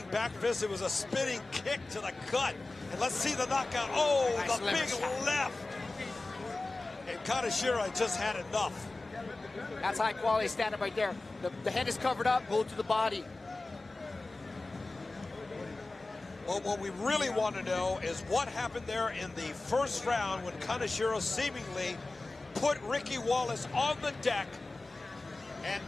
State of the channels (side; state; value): right; quieter; 3.1 dB